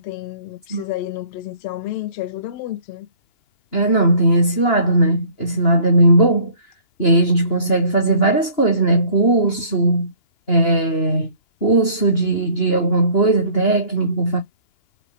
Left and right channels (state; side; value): late; right; 2.9 ms